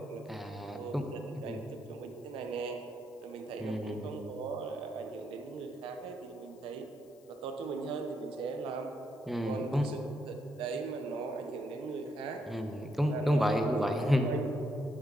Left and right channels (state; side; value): noise; left; hiss, 30 dB below the sound